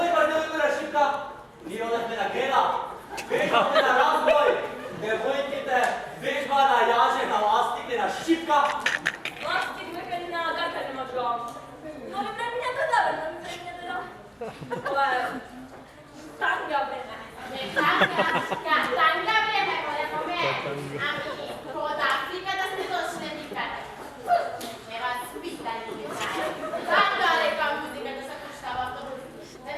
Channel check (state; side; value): identical; both; correlation 1.00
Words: Ние одахме на Гена, вежбаме на разбой, девојките вежба на јаже, на ластик, на шипка. Ластик ме кади на гакане мачко. Но ми преминете да, но ми преминете да. Ова е танга време. Не танга време, големо ме. Ами, од Африка да сте дошли никаде. Не вас питали ви знае. Танга лека музика да се пуштава автобус. Не